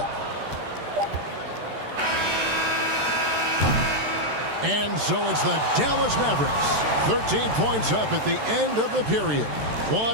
And so it's the Dallas Mavericks, 13 points up at the end of the period. What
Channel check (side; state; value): left; late; 13 ms